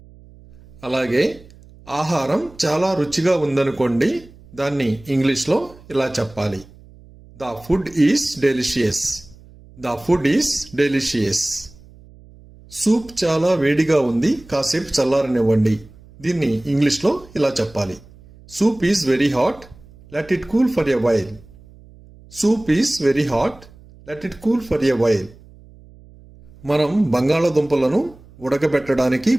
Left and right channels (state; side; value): noise; right; hum, 23 dB below the sound